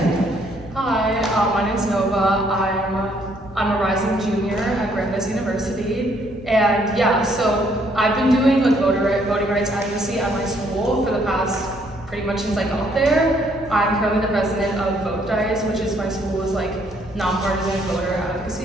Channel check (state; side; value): normal; both; correlation 0.67